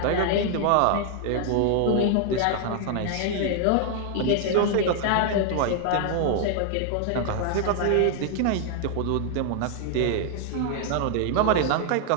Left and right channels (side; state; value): both; different; correlation 0.00